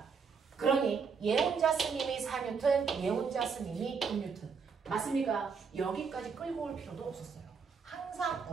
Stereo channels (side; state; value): left; quieter; 5.7 dB